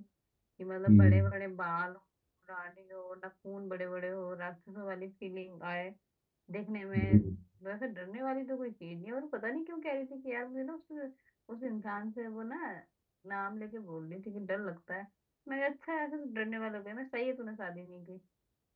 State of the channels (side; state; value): both; identical; correlation 1.00